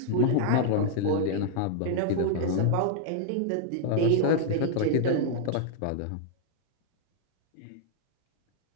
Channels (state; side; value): different; both; correlation -0.01